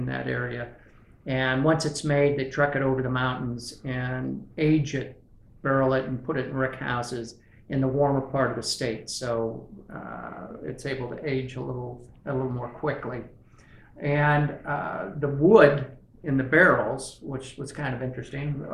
that area. And once it's made, they truck it over the mountains and age it, barrel it, and put it in rick houses in the warmer part of the state, so it's able to age a little more quickly. And the wood in the barrels, which was kind of interesting.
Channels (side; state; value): both; identical; correlation 1.00